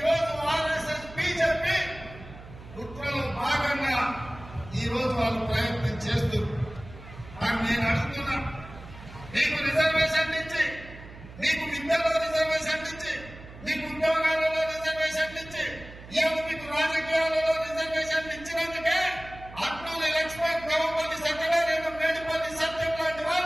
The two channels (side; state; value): right; noise; hum, 17 dB below the sound